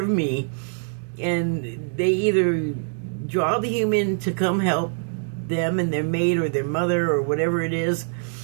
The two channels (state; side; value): silent; left; digital silence